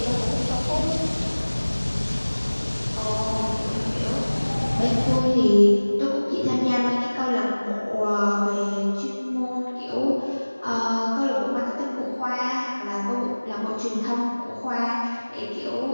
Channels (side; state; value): both; inverted; correlation -1.00